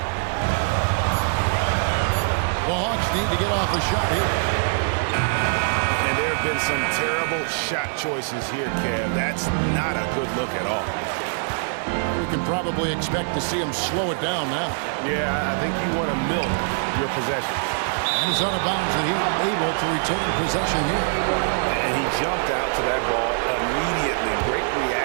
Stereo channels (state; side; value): silent; left; digital silence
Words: The Hawks need to get off the shot here. And there have been some terrible shot choices here, Kev. That's not a good look at all. We can probably expect to see him slow it down now. Yeah, I think you want to milk your possession. And he's out of bounds, and he's able to retain possession here. And he jumped out to that ball immediately. Great